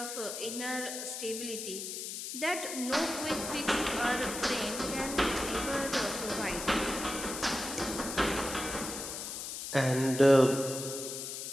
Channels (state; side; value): noise; left; hiss, 6 dB below the sound